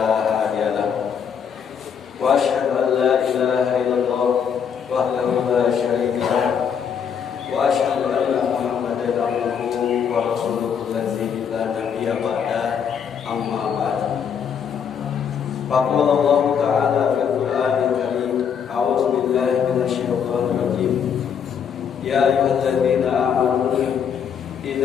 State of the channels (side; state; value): right; quieter; 7.5 dB